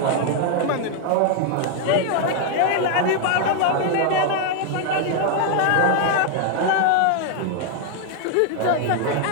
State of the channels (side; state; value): both; different; correlation 0.00